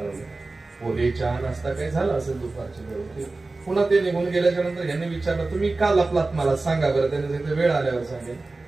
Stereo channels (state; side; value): quieter; left; 3.4 dB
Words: पोहे चहा नाश्ता काही झाला असेल दुपारच्या वेळी. पुन्हा ते निघून गेल्याच्या नंतर यांनी विचारलं, तुम्ही का लपलात? मला सांगा बरं. त्याने सांगितलं, वेळ आल्यावर सांगेल.